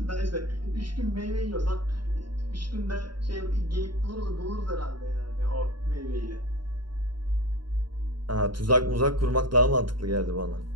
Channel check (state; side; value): late; left; 0.72 ms